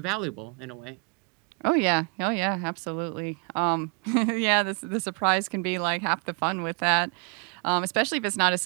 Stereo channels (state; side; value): quieter; left; 35.3 dB